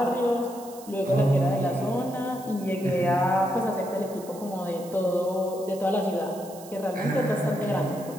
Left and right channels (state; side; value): noise; right; hiss, 19 dB below the sound